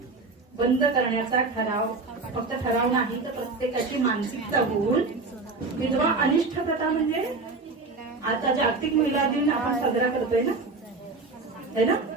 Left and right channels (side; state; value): left; quieter; 3.7 dB